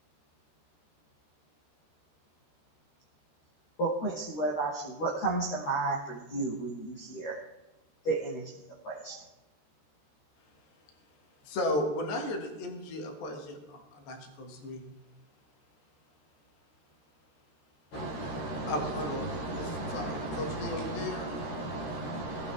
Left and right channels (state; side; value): late; right; 13 ms